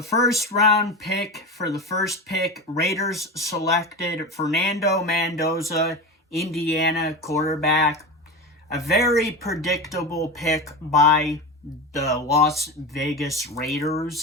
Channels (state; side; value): normal; both; correlation 0.24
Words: first round pick for the first pick, Raiders selected Fernando Mendoza, Indiana quarterback. A very predictable pick by the Las Vegas